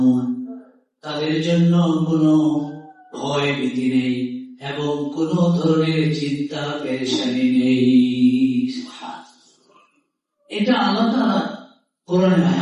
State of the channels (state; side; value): identical; both; correlation 1.00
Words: তাদের জন্য কোনো ভয় ভীতি নেই এবং কোন ধরনের চিন্তা পেরেশানি নেই। এটা আল্লাহ তাআলা কোরআনে